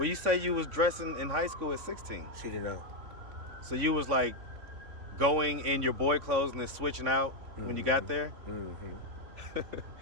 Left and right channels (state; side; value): late; left; 3.5 ms